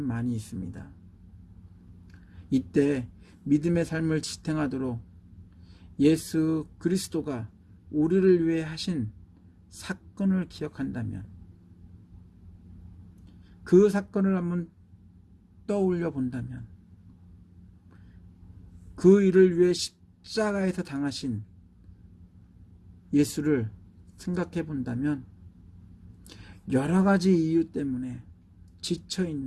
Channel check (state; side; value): identical; both; correlation 1.00